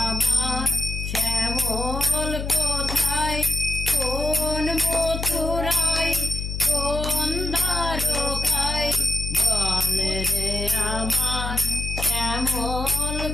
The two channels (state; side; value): noise; left; hum, 4 dB below the sound